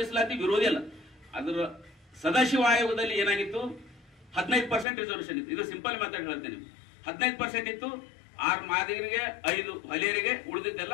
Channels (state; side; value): drops out; right; at 4.9 s